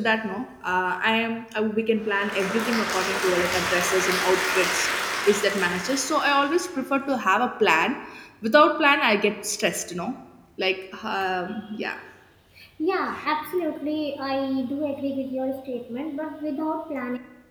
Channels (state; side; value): identical; both; correlation 1.00